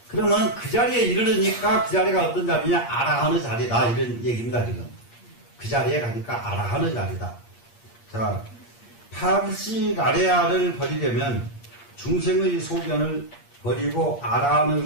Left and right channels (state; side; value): late; right; 8.5 ms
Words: 그러면 그 자리에 이르르니까 그 자리가 어떤 자리냐? 아라하는 자리다. 이런 얘기입니다, 지금. 그 자리에 가니까 아라하는 자리다. 자, 8식 아레아를 버리려면 중생의 소견을 버리고